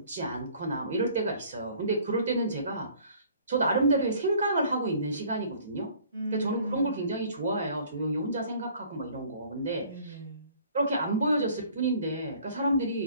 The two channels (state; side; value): inverted; both; correlation -0.54